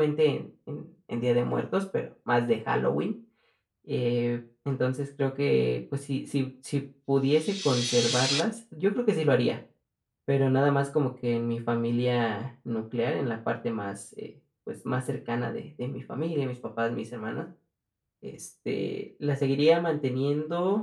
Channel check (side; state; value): both; identical; correlation 1.00